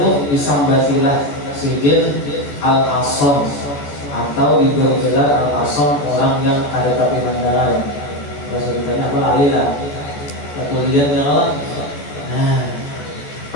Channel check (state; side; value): late; right; 14 ms